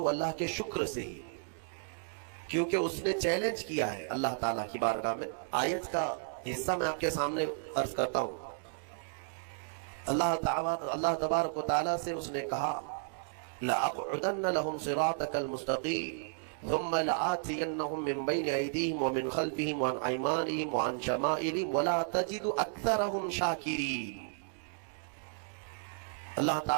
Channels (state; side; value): silent; left; digital silence